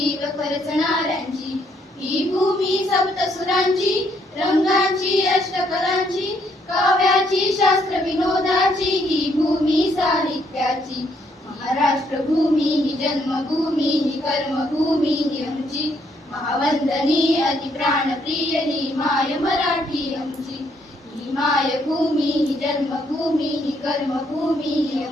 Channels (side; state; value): both; normal; correlation 0.71